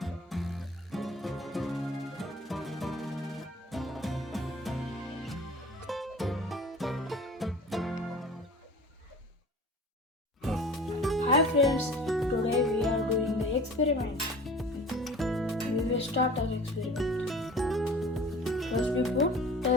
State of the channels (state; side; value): normal; both; correlation 0.42